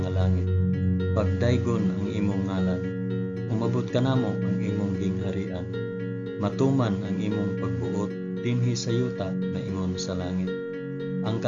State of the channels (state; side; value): identical; both; correlation 1.00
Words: langit, pagdaygon ang imong ngalan, umabot ka namo ang imong gingharian, matuman ang imong pagbuot dinhi sa yuta na ingon sa langit. Ang